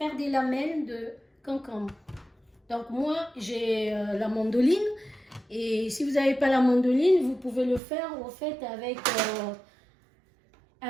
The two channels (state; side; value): drops out; left; at 7.8 s